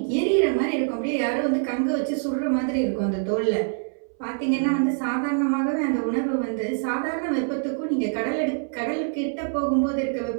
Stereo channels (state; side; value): silent; left; 62 dB below the other